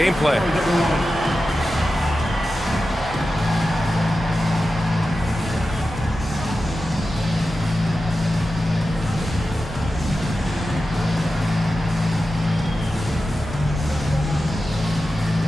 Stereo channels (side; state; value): both; normal; correlation 0.92